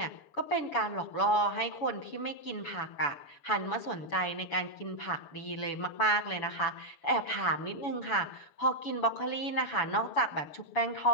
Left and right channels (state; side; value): late; right; 7.0 ms